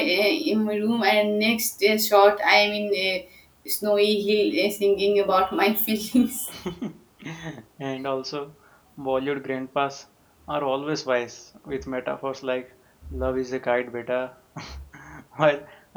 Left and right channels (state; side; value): identical; both; correlation 1.00